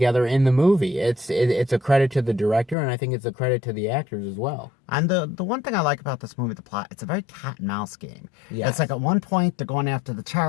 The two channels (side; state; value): right; drops out; at 2.8 s